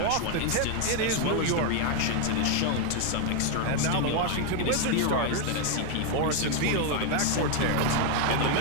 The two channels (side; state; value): both; different; correlation 0.01